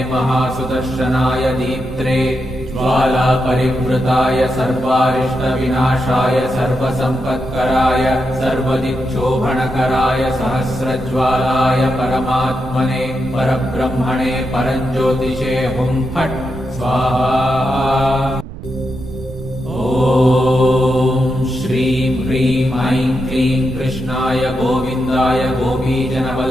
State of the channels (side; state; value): right; noise; rumble, 12 dB below the sound